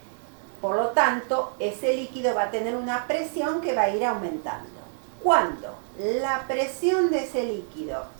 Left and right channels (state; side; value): silent; left; 61 dB below the other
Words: Por lo tanto, ese líquido va a tener una presión que va a ir aumentando. Cuando la presión de ese líquido